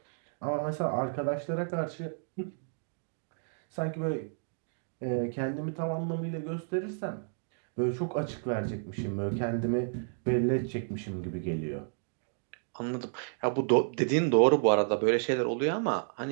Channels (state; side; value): silent; left; digital silence